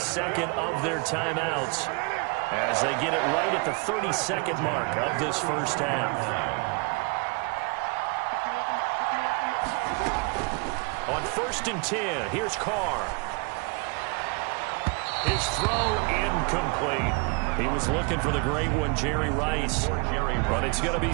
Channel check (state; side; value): quieter; left; 31.2 dB